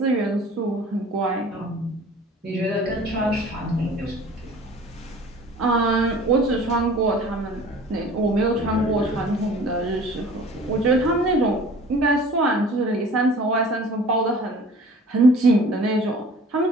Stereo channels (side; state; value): both; normal; correlation 0.46